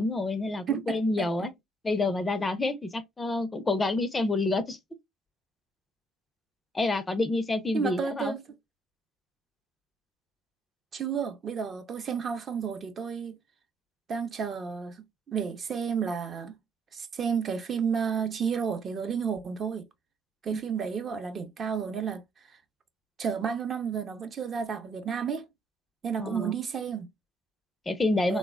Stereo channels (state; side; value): normal; both; correlation 0.69